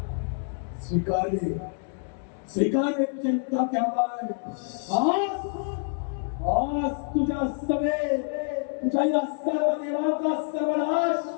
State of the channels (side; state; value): right; silent; 60 dB below the other